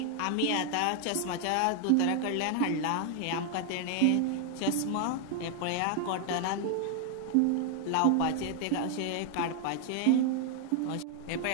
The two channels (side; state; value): both; different; correlation 0.00